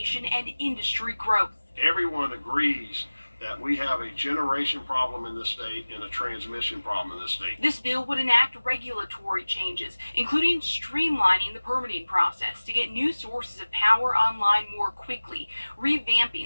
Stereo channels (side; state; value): both; inverted; correlation -1.00